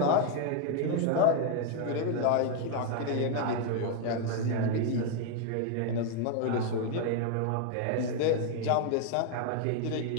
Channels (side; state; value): both; different; correlation 0.01